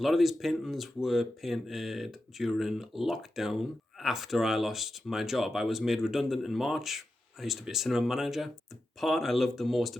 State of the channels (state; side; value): normal; both; correlation 0.90